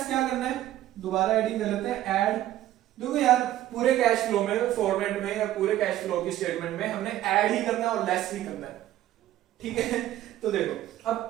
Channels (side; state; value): left; quieter; 13.5 dB